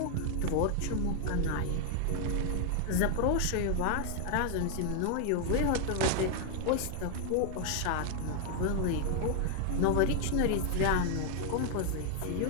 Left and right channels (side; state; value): both; different; correlation 0.00